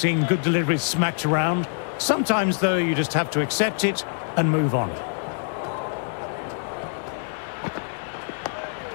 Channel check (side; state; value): right; silent; digital silence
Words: good deliveries smacked around. Sometimes, though, you just have to accept it and move on.